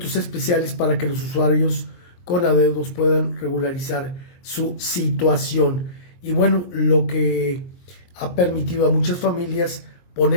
especiales para que los usuarios con adeudos puedan regularizar su situación. Y bueno, lo que ha permitido a muchas familias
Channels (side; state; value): right; late; 23 ms